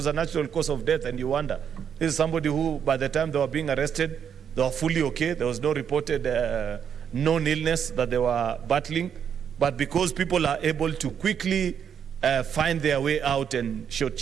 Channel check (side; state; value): left; quieter; 8.0 dB